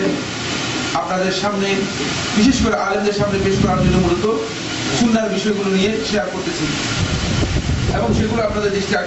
আপনাদের সামনে, বিশেষ করে আলেমদের সামনে পেশ করার জন্য মূলত সুন্নাহর বিষয়গুলো নিয়ে শেয়ার করতেছি, এবং সেগুলো আপনাদের দৃষ্টি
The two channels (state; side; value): identical; both; correlation 1.00